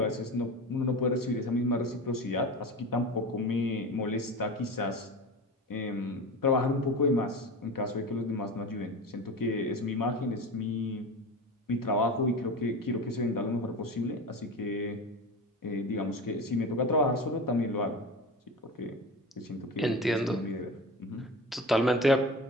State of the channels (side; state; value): both; normal; correlation 0.29